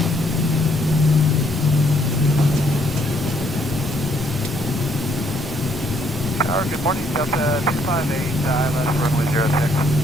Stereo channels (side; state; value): both; normal; correlation 0.69